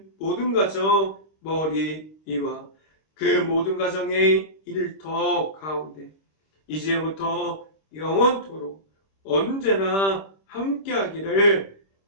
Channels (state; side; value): late; right; 26 ms